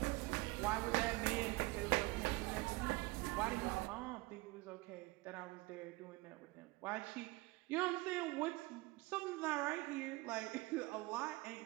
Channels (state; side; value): quieter; left; 22.3 dB